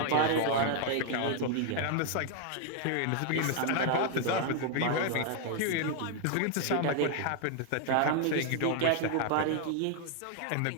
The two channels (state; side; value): different; both; correlation 0.00